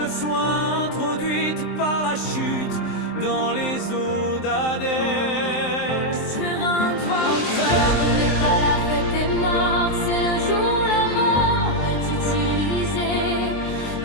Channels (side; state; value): right; late; 23 ms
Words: soit introduite par la chute dans les eaux d'Hadès. Sur un ce n'est pas la fête des morts, c'est le jour où la mort est utilisée